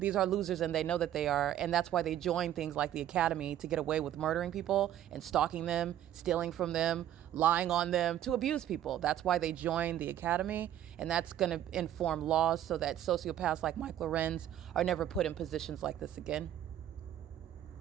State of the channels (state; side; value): quieter; left; 11.5 dB